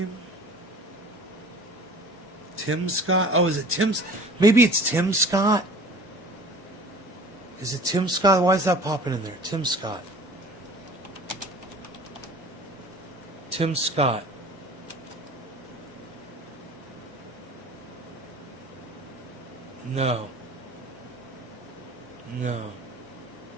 Tim Scott? Oh, is it Tim? Maybe it's Tim Scott? Is it Tim Scott? Why is that popping in there? Tim Scott. Tim Scott. No. No.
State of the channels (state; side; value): normal; both; correlation 0.44